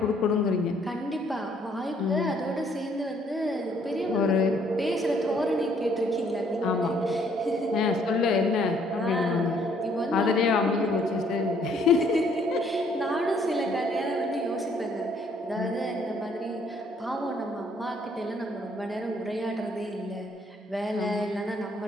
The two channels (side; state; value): both; normal; correlation 0.65